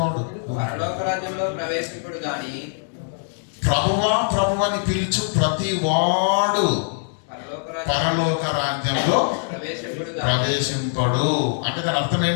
పరలోక రాజ్యంలో ప్రవేశింపుడు గాని. ప్రభువా ప్రభువని పిలుచు ప్రతివాడు పరలోక రాజ్యంలో ప్రవేశింపడు. అంటే దాని అర్థం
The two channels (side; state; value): right; silent; digital silence